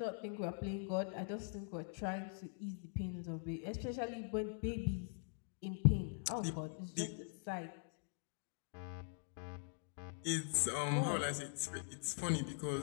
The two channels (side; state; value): right; silent; digital silence